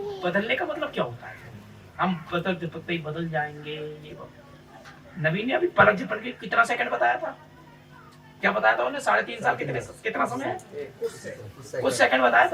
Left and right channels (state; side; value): identical; both; correlation 1.00